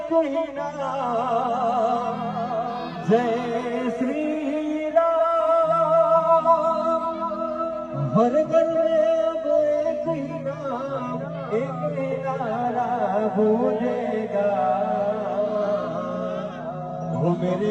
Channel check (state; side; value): identical; both; correlation 1.00